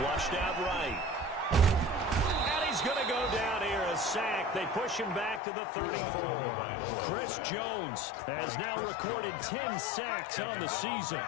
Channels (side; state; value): right; drops out; at 5.4 s